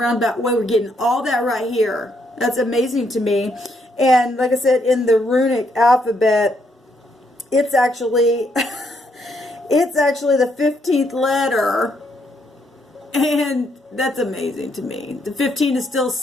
way we're getting all that right here. That's amazing to me. And like I said, in the runic alphabet, it's actually it's actually the 15th letter, and that's amazing to me. The 15 is still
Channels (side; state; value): both; normal; correlation 0.74